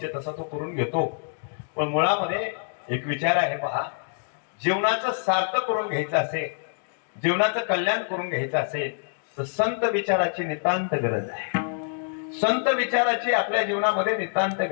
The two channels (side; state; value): right; silent; 61 dB below the other